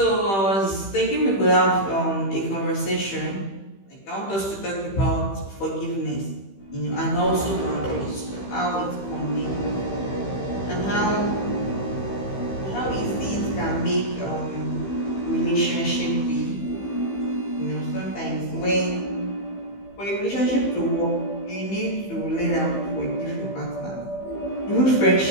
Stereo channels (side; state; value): right; late; 15 ms